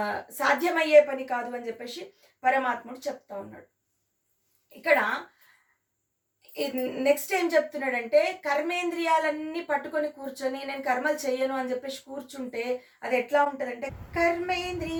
సాధ్యమయ్యే పని కాదు అని చెప్పేసి పరమాత్ముడు చెప్తా ఉన్నాడు. ఇక్కడ నెక్స్ట్ ఏం చెప్తున్నాడంటే కర్మేంద్రియాలన్నీ పట్టుకొని కూర్చొని నేను కర్మలు చెయ్యను అని చెప్పేసి కూర్చుంటే అది ఎట్లా ఉంటుందంటే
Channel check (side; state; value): both; identical; correlation 1.00